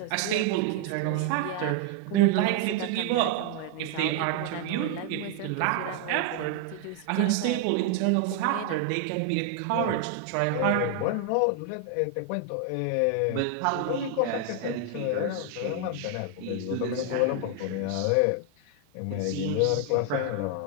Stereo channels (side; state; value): both; different; correlation 0.00